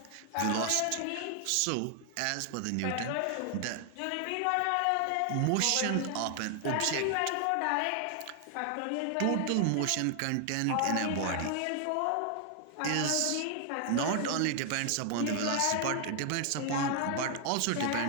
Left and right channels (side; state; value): both; different; correlation 0.00